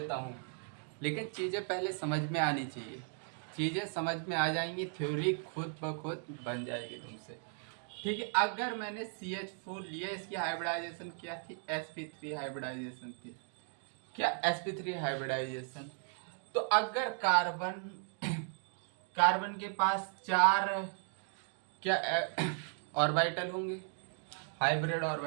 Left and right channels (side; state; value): left; silent; 53 dB below the other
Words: हूँ, लेकिन चीजें पहले समझ में आनी चाहिए। चीजें समझ में आ जाएंगी, थ्योरी खुद ब खुद बन जाएगी तुमसे। ठीक है। अगर मैंने CH4 लिया, इसकी हाइब्रिडाइजेशन क्या थी? sp3 हाइब्रिडाइजेशन थी। क्या? sp3 hybridisation. तो अगर कार्बन के पास 4 क्या ऑर्बिटल होंगे? Hybrid